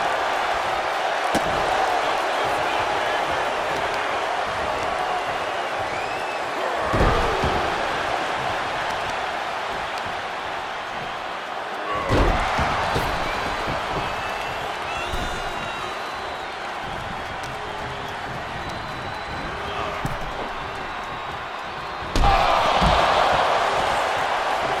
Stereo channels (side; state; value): both; identical; correlation 1.00